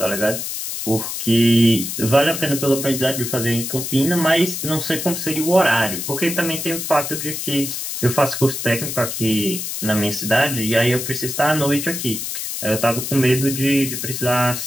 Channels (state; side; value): noise; left; hiss, 5 dB below the sound